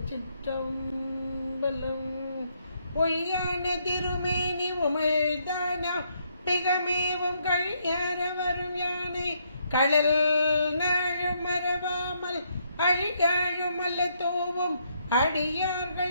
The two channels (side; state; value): both; inverted; correlation -0.73